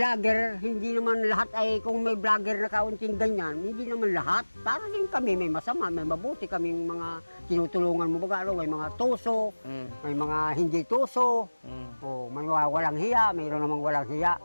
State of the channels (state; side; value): inverted; both; correlation -1.00